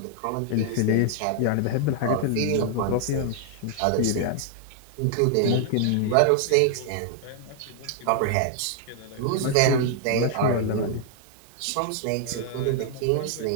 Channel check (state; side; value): different; both; correlation -0.01